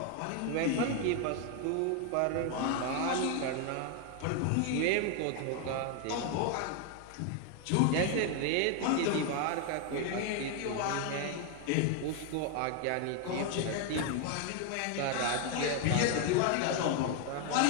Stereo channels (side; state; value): both; different; correlation 0.01